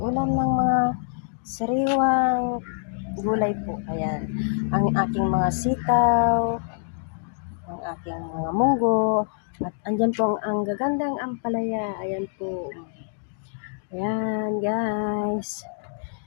ng mga sariwang gulay po. Ayan, ang aking mga sitaw, ang aking mga munggo, at andyan po ang gagandang ampalaya. Ayan po. Ayan guys.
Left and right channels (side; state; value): right; silent; digital silence